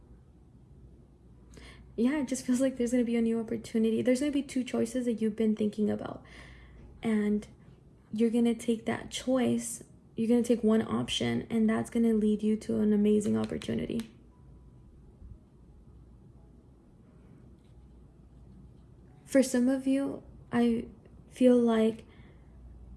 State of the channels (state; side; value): identical; both; correlation 1.00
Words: Yeah, it just feels like there's going to be a new opportunity. There's going to be two choices that you've been thinking about. And you're going to take that choice. You're going to take one option, and that's going to lead you to an amazing opportunity. For some of you, I feel like